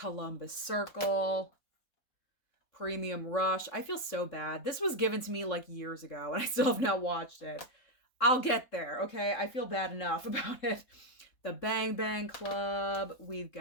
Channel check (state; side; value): late; right; 3.7 ms